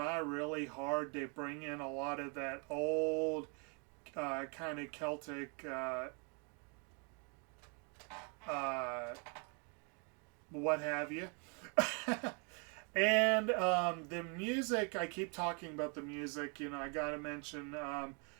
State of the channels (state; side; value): quieter; left; 36.2 dB